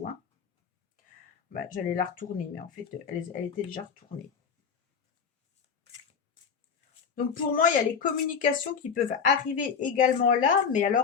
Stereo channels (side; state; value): right; quieter; 6.5 dB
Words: hein. Bah, j'allais la retourner, mais en fait, elle était déjà retournée. Donc pour moi, il y a les communications qui peuvent arriver également là, mais